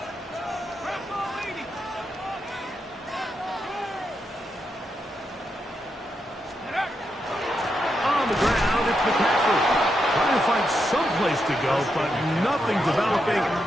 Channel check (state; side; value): normal; both; correlation 0.83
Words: Someplace to go, but nothing developing.